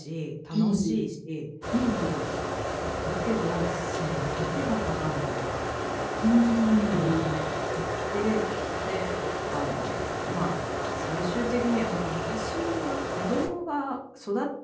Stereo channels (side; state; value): both; identical; correlation 1.00